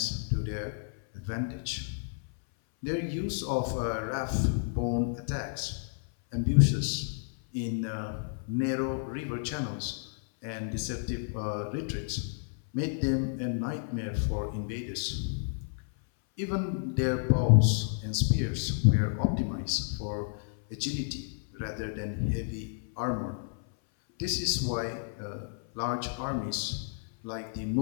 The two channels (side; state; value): right; silent; 57 dB below the other